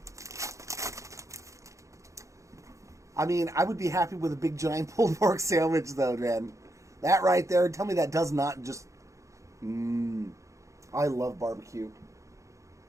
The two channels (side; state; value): left; late; 0.15 ms